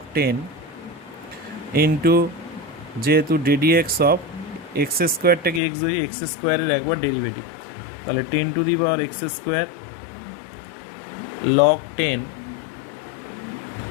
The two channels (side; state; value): right; drops out; at 5.6 s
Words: 10 ইন্টু, যেহেতু ডিডিএক্স অফ x²টাকে এক্স ধরি, x² এর একবার ডেরিভেটিভ, তাহলে 10⁻x² লগ 10